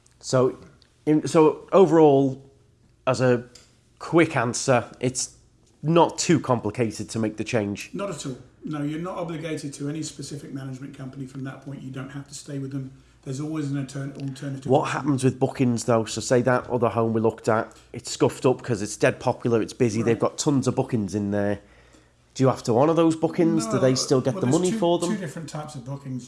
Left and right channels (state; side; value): identical; both; correlation 1.00